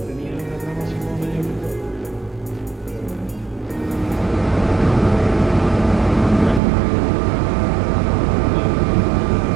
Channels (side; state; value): left; drops out; at 6.6 s